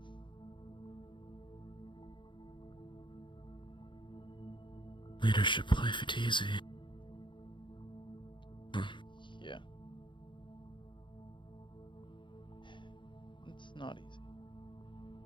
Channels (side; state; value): right; late; 0.23 ms